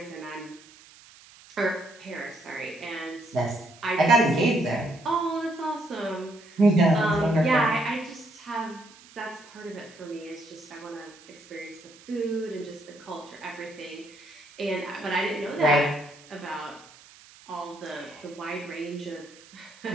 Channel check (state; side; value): noise; right; hiss, 22 dB below the sound